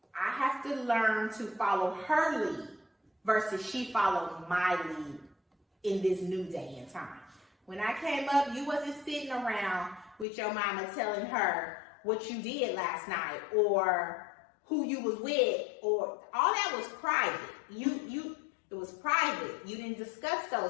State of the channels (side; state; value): right; drops out; at 10.2 s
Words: I have to learn to follow her lead versus she followed my lead in this new day and time. When I came up, you wasn't sitting around with your mama telling her what you did last night or who you was with, or all that was private. It was private. You didn't discuss